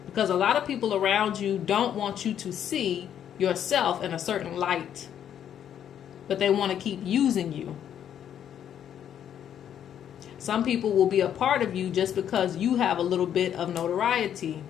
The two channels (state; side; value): quieter; right; 9.6 dB